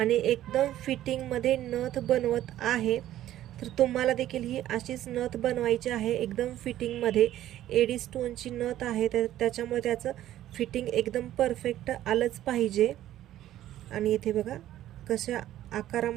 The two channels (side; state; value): left; quieter; 13.1 dB